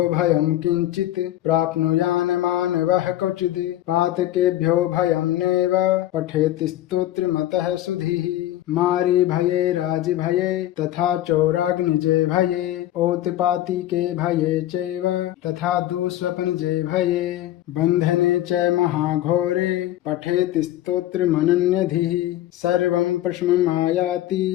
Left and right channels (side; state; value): right; quieter; 13.8 dB